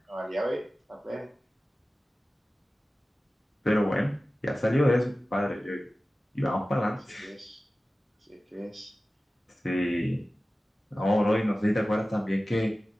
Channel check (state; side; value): normal; both; correlation 0.96